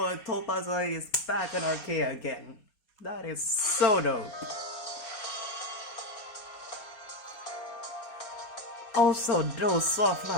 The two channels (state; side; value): late; right; 4.2 ms